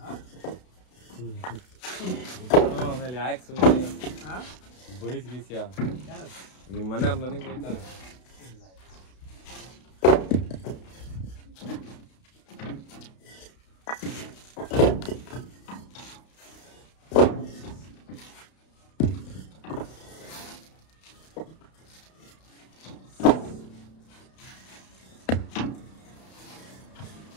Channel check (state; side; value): late; right; 32 ms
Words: ಹಾಂ ಆಮೇಲೆ ಯಾಕೆ ಸುಮ್ಮನೆ ಹಾಂ ಬಯಸ್ಗೀಸ್ಯಾ ಯಾರು ನಿಮ್ಮ ಮನೆಯವ್ರು ನನಗೆ ಬೈತಾರೆ. ಇಲ್ಲ